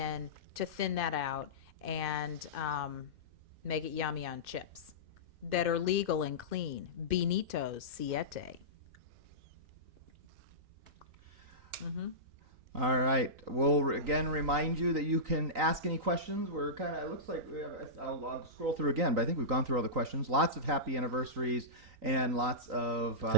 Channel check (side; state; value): left; late; 3.9 ms